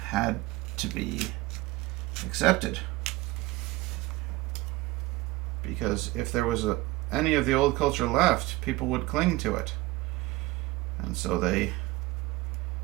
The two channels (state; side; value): quieter; left; 20.4 dB